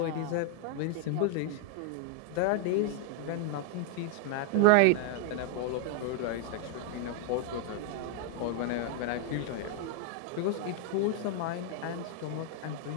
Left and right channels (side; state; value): both; different; correlation 0.00